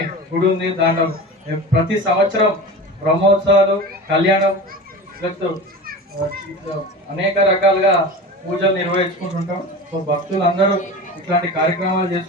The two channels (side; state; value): both; normal; correlation 0.31